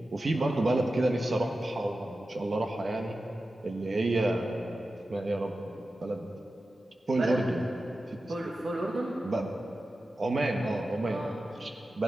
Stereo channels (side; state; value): both; normal; correlation 0.93